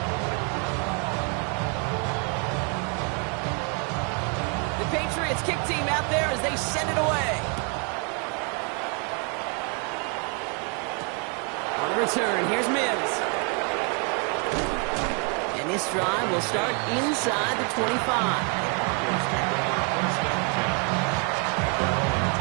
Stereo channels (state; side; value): quieter; left; 37.4 dB